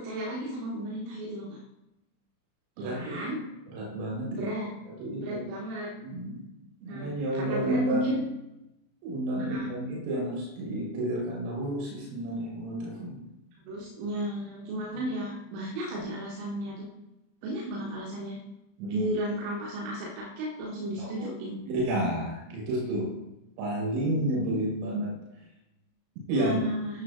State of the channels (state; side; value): late; left; 35 ms